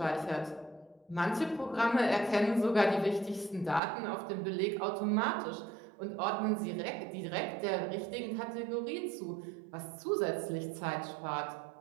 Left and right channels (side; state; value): left; drops out; at 3.8 s